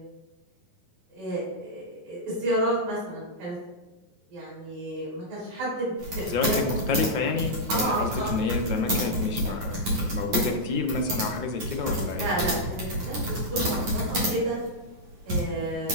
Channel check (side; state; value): left; late; 9.4 ms